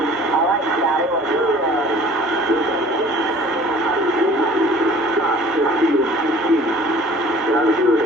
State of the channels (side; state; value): both; normal; correlation 0.49